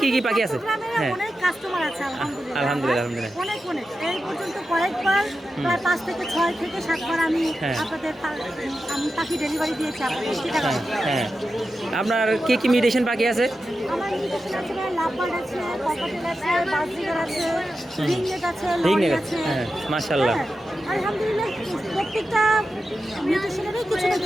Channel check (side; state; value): both; normal; correlation 0.91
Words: কি কি পাখি আছে? হ্যাঁ আলহামদুলিল্লাহ আলহামদুলিল্লাহ। এই পর্যন্ত কয়েকবার প্রায় 5 থেকে 6 থেকে 7 বার আমি আপনাদের আমি পাখি ডেলিভারি দিয়েছি আপনাদের চিটাগাং। হ্যাঁ, আপনার কি কি মিউটেশন পাখি আছে? আমার মিউটেশন আছে, লাভবার্ড আছে, ককাটেল আছে, বাজরিগার আছে, রিংনেট আছে, লরি আছে। হ্যাঁ মাশাআল্লাহ। আলহামদুলিল্লাহ প্রত্যেকটা মিউটেশনেরই কিছু না